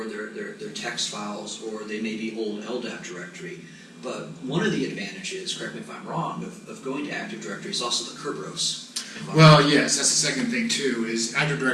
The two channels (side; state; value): both; identical; correlation 1.00